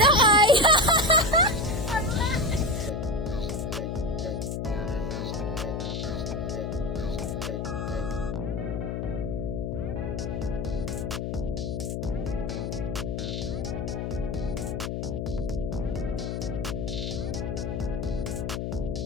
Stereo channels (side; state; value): left; noise; hum, 2 dB below the sound